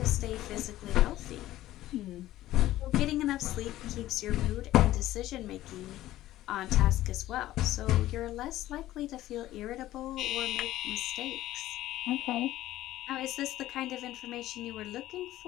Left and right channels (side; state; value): right; quieter; 14.8 dB